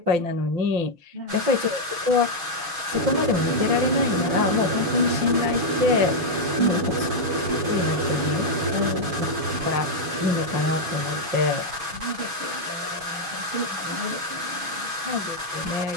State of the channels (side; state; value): left; late; 6.2 ms